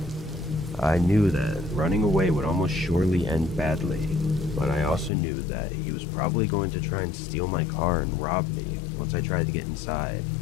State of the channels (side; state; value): right; drops out; at 5.1 s